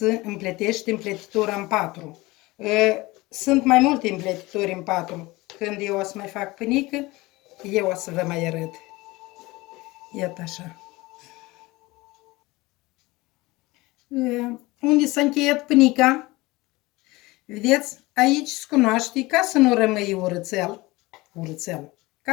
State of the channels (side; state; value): right; quieter; 21.2 dB